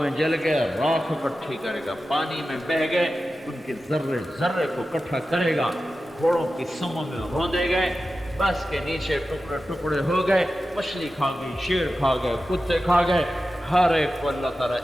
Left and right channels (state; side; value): normal; both; correlation 0.93